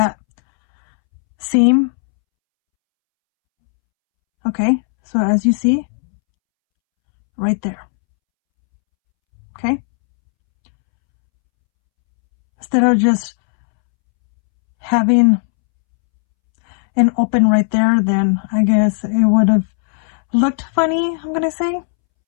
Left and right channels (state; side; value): silent; right; 69 dB below the other